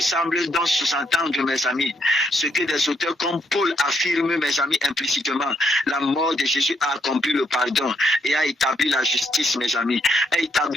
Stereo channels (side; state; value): both; normal; correlation 0.75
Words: donc sous-entendre, mes amis, ce que des auteurs comme Paul affirment, mes amis, implicitement. La mort de Jésus a accompli le pardon et a établi la justice, mes amis. A